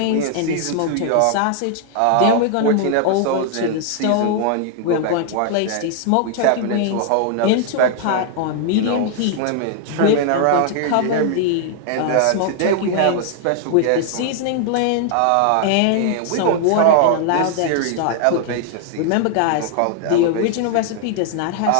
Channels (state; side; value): different; both; correlation 0.00